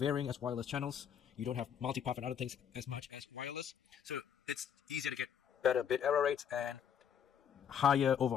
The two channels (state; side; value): quieter; right; 8.4 dB